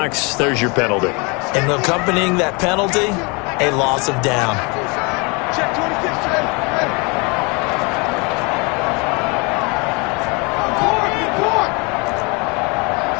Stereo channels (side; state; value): right; quieter; 29.9 dB